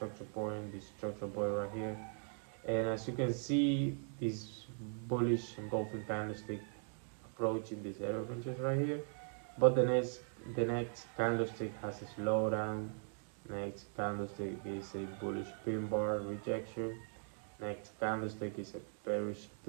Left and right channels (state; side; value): silent; left; 51 dB below the other